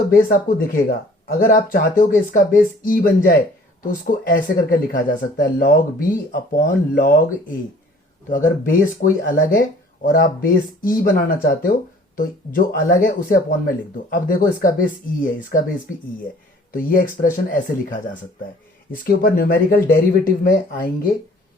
बेस आपको दिखेगा। अगर आप चाहते हो कि इसका बेस e बन जाए तो उसको ऐसे करके लिखा जा सकता है, log b upon log a। तो अगर बेस कोई अलग है और आप बेस e बनाना चाहते हो तो जो अलग है उसे अपॉन में लिख दो। अब देखो, इसका बेस e है, इसका बेस भी e है, तो ये एक्सप्रेशन ऐसे लिखा जा सकता है। इसके ऊपर न्यूमेरिकल डेरिवेटिव में आएंगे,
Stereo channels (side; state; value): both; normal; correlation 0.53